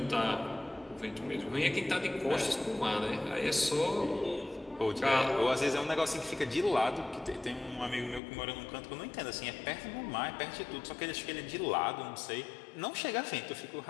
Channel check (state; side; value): drops out; right; at 8.2 s